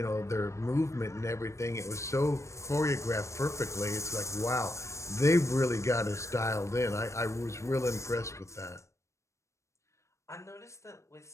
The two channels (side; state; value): right; late; 0.14 ms